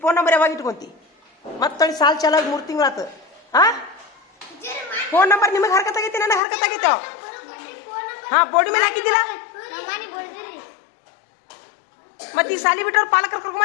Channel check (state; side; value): drops out; right; at 6.4 s